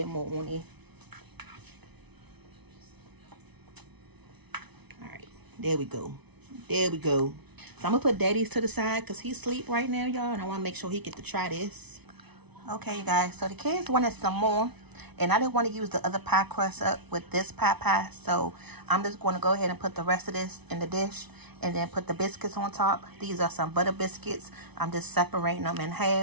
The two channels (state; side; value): late; left; 0.99 ms